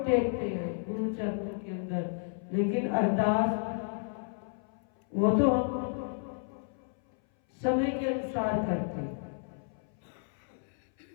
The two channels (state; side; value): silent; right; 57 dB below the other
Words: टेकते हैं गुरु चरणों के अंदर, लेकिन अरदास वो तो हम समय के अनुसार करते हैं।